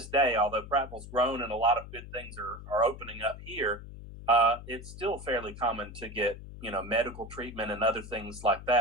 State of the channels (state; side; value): noise; left; hum, 13 dB below the sound